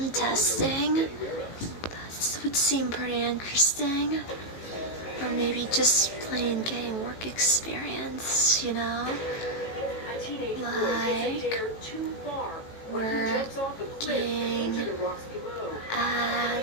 testing, that would seem pretty interesting. Or maybe just plain getting work experience, you know? Like working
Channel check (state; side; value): late; right; 18 ms